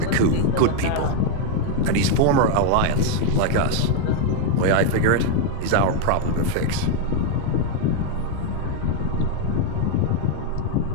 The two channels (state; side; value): different; both; correlation 0.01